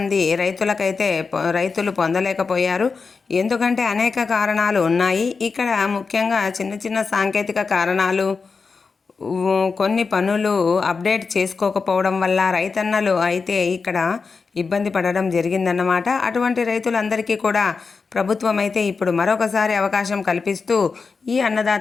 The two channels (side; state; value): right; quieter; 4.8 dB